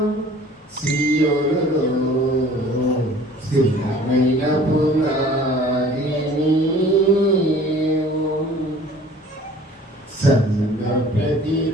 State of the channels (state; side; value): normal; both; correlation 0.49